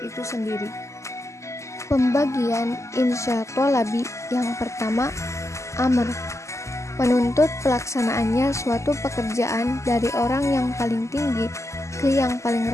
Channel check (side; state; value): right; late; 0.14 ms